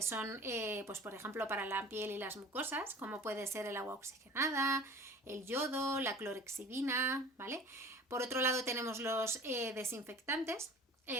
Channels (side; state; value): both; normal; correlation 0.43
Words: son, pues por ejemplo, para la piel y las mucosas, como puede ser el agua oxigenada, el yodo, la clorexidina, ¿vale? Por otro lado tenemos los desinfectantes.